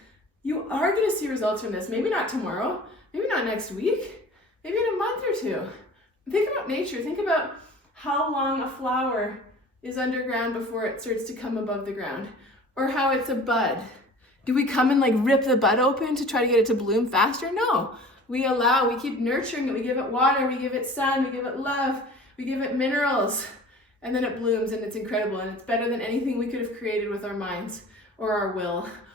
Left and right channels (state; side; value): normal; both; correlation 0.43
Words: You are gonna see results from this. Maybe not tomorrow, maybe not next week, maybe in a month or 2. Think about nature. Think about how long a flower is underground before it starts to come above the ground, or how it's a bud. Do we come and like rip the bud open to try to get it to bloom faster? No, we keep nurturing it. We give it water, we give it sun, we give it love, we give it minerals, and then it blooms and it's incredible. And it's better than anything we could have created with our minds or our will